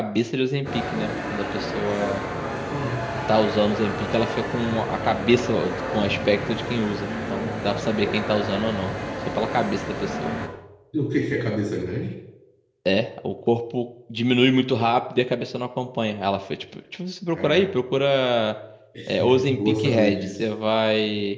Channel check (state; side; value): identical; both; correlation 1.00